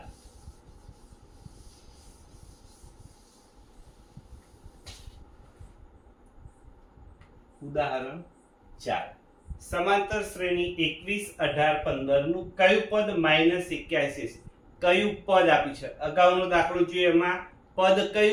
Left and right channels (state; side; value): identical; both; correlation 1.00